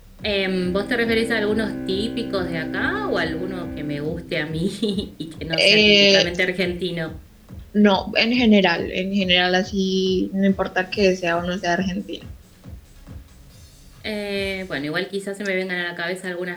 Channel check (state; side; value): identical; both; correlation 1.00